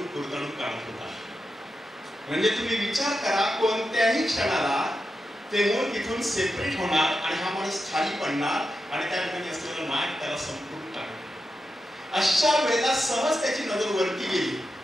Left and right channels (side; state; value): both; normal; correlation 0.88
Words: कुरतडून काढत होता. म्हणजे तुम्ही विचार करा, कोणत्याही क्षणाला ते मूळ तिथून सेपरेट होणार आणि हा माणूस खाली पडणार आणि त्या ठिकाणी असलेलं नाग त्याला संपूर्ण टाकणार. अशा वेळेला सहज त्याची नजर वरती गेली